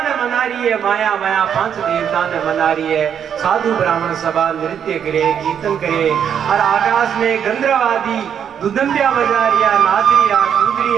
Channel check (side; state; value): left; quieter; 8.3 dB